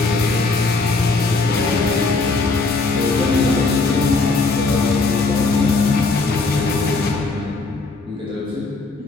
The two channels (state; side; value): quieter; right; 3.7 dB